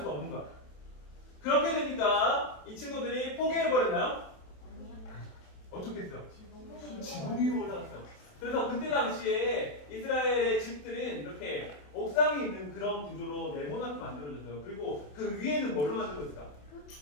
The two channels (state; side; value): late; right; 27 ms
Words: 없는 거야. 그렇게 되니까 이 친구들이 포기해버렸나요? 어떻게 했어요? 지붕 위로 올라갔어요. 그래서 그때 당시에 이스라엘의 집들은 이렇게 옥상에 있는 그런 구조로 네모나게 만들어졌어요. 그리고 그 위에는 뭘로 만들어졌을까?